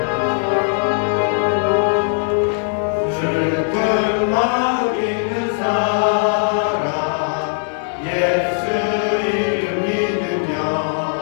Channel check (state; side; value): silent; right; digital silence